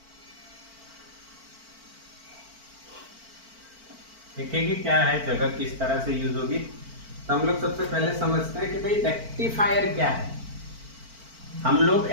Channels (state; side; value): late; left; 4.5 ms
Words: देखेंगे क्या है, जगह किस तरह से यूज होगी। तो हम लोग सबसे पहले समझते हैं कि भाई रेक्टिफायर क्या है। हम लोग